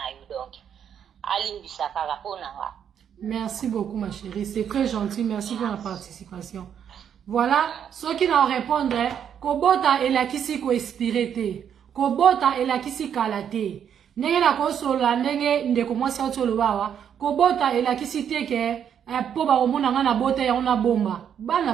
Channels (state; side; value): quieter; left; 8.6 dB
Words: yo donc alimbisa kaka mpo na nga. Merci beaucoup ma chérie, c'est très gentil, merci pour la participation. Voilà, ceux qui n'ont répondu, kobota elakisi ko expiré te, kobota elakisi kala te. Ndenge na kosola ndenge ndeko mwasi otolobawa, kobota elakisi te ke po ba omona nga na bota ya ona bomba. Bana